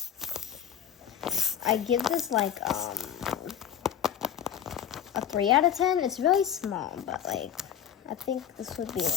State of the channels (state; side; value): quieter; right; 9.4 dB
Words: I give this like a 3 out of 10. It's really small, but like I think this would be